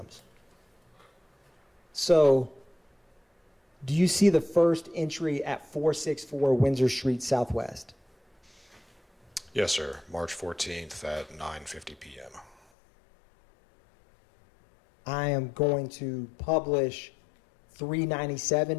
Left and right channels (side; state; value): right; drops out; at 12.6 s